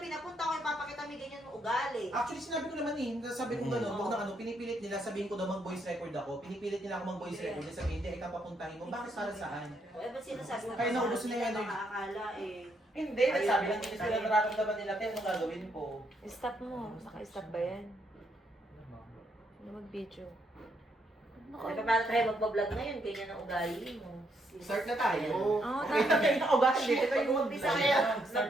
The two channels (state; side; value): normal; both; correlation 0.75